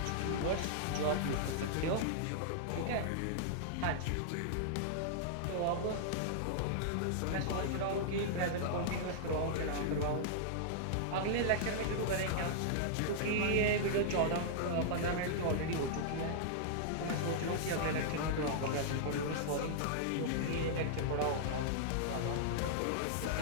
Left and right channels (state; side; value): different; both; correlation -0.01